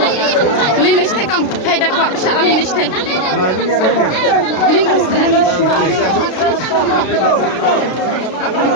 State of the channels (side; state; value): right; late; 33 ms